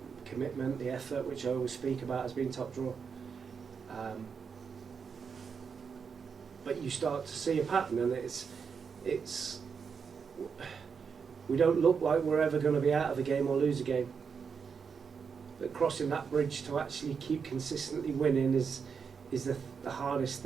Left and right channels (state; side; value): quieter; left; 6.1 dB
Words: commitment, the effort, which I always speak about, has been top drawer. But you start to see a pattern, and it's we don't look like we're ever going to be out of a game or lose a game. But crossing that bridge to actually keep consistently winning is the hardest